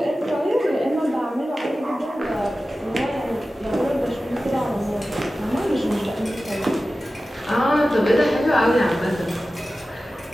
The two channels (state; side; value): normal; both; correlation 0.95